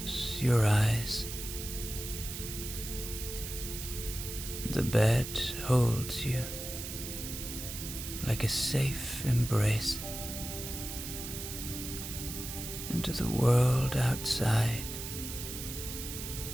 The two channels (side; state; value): right; noise; hiss, 7 dB below the sound